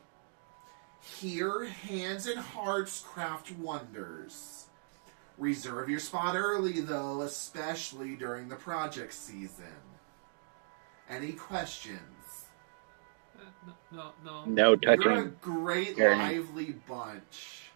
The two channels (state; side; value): silent; left; digital silence